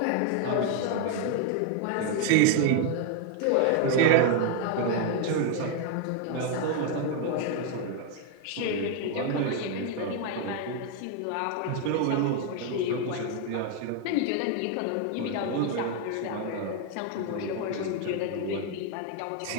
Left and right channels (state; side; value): different; both; correlation 0.00